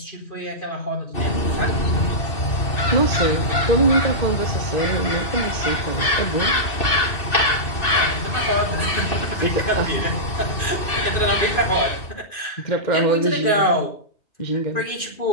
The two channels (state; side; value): late; right; 2.6 ms